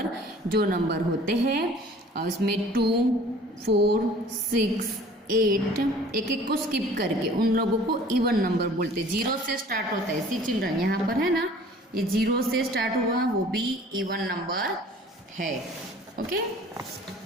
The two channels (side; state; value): both; normal; correlation 0.49